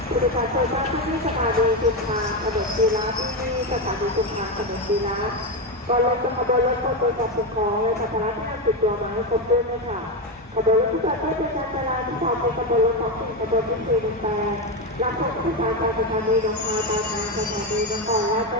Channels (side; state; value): both; normal; correlation 0.11